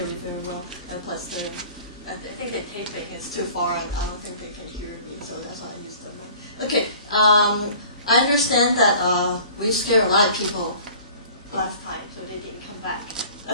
very well, and plus I think they're taping. It's too far, and I don't think they can hear me, so that's why I use the mic. Okay, I understand that we scared a lot of people last time, so they didn't come back.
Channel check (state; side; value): inverted; both; correlation -0.47